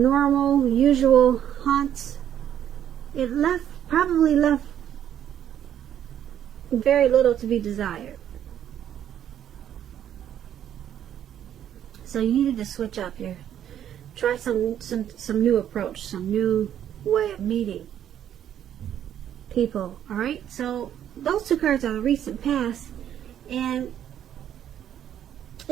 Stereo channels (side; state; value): left; quieter; 10.3 dB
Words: usual hunts, it probably left very little to be desired. So you needed to switch up try some new approach, some new way of meeting people. All right, so those two cards are the recent past, and